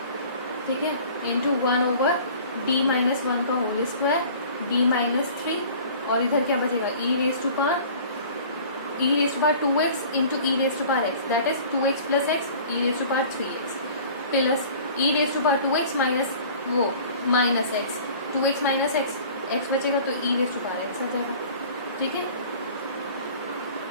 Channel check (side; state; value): both; inverted; correlation -0.46